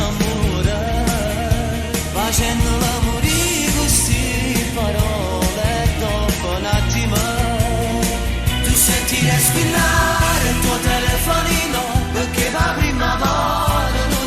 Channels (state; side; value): identical; both; correlation 1.00